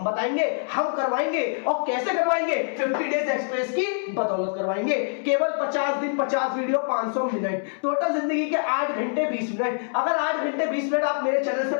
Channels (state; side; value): silent; right; 62 dB below the other